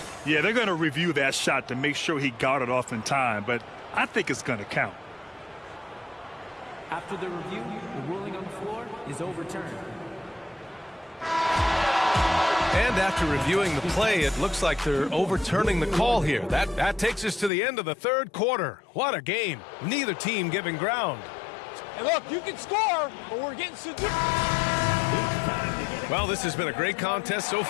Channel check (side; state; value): right; drops out; at 17.5 s